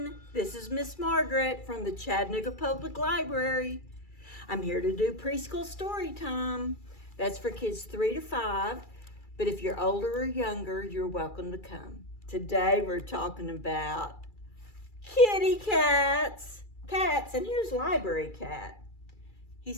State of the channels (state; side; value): late; right; 2.3 ms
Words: This is Miss Margaret from the Chattanooga Public Library. I'm here to do preschool story time. That's for kids 3 to 5, but if you're older or younger, you're welcome to come. Today we're talking about kitty cats. And here's Library Cat. He